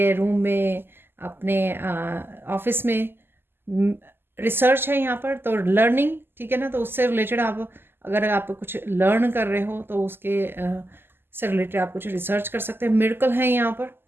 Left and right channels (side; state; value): left; late; 0.10 ms